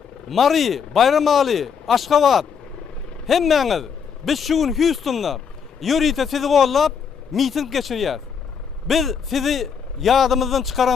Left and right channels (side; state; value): right; quieter; 6.7 dB